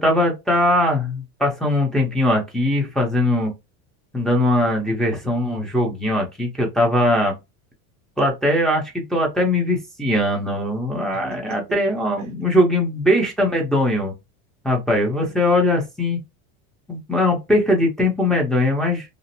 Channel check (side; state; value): both; normal; correlation 0.54